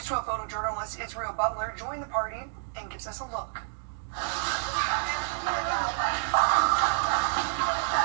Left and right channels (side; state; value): left; silent; digital silence